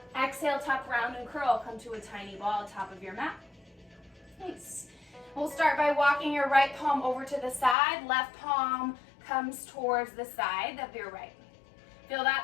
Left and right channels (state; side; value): drops out; right; at 7.8 s